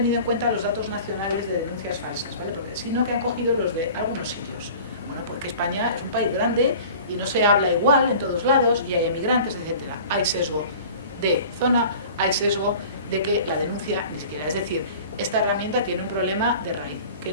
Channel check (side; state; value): both; inverted; correlation -0.43